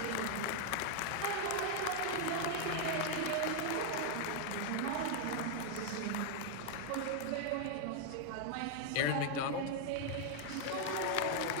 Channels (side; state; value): both; different; correlation 0.00